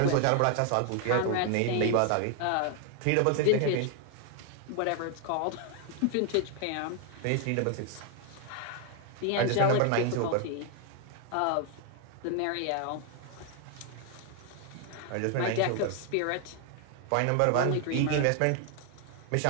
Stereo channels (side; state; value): both; different; correlation 0.00